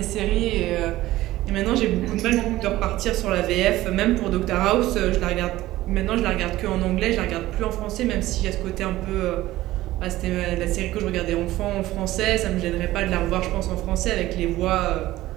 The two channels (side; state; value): left; quieter; 16.2 dB